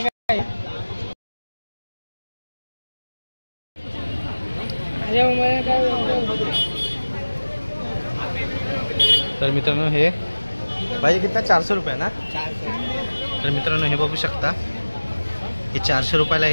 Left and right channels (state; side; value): inverted; both; correlation -1.00